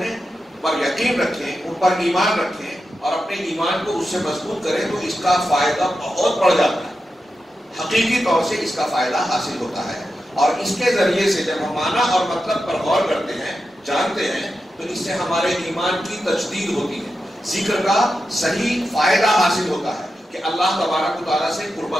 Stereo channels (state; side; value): normal; both; correlation 0.90